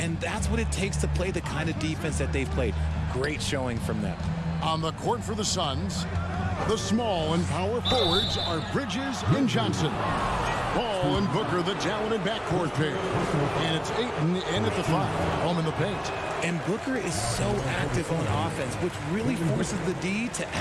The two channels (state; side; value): identical; both; correlation 1.00